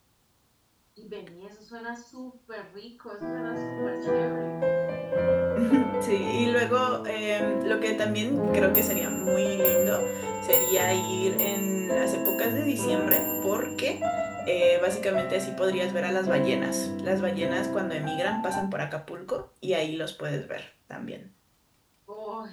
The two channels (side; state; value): both; identical; correlation 1.00